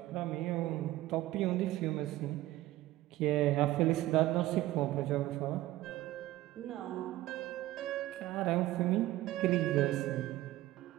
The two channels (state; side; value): quieter; left; 16.2 dB